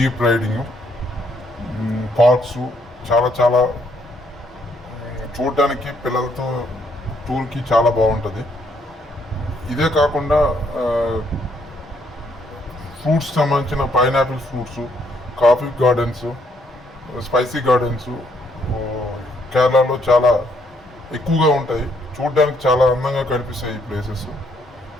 రైడింగ్, పార్క్స్ చాలా చాలా చూడడానికి పిల్లలతో టూర్కి చాలా బాగుంటుంది. ఇదే కాకుండా ఫ్రూట్స్ సంబంధించిన pineapple fruits, coffee gardens, spicy gardens కేరళలో చాలా ఎక్కువగా ఉంటాయి. చూడడానికి చాలా అందంగా కనిపిస్తాయి ఈ ప్లేసెస్.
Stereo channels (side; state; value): both; normal; correlation 0.71